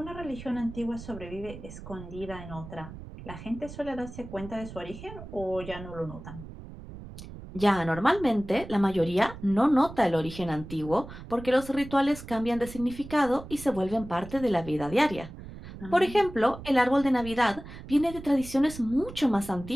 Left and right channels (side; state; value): right; noise; rumble, 13 dB below the sound